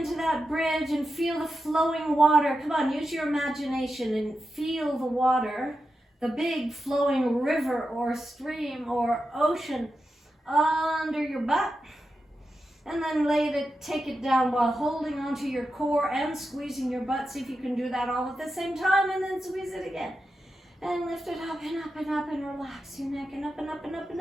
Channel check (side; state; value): both; normal; correlation 0.89